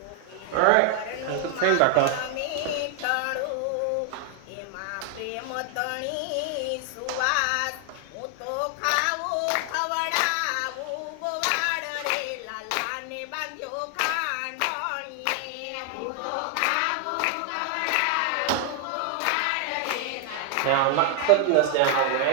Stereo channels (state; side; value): different; both; correlation 0.00